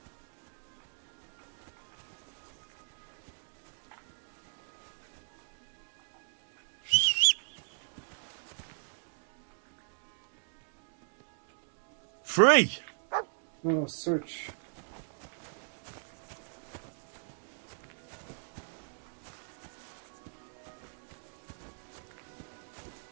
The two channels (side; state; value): left; silent; digital silence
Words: Free! No, search.